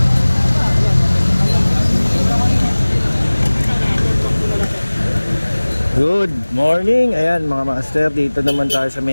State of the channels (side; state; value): both; inverted; correlation -1.00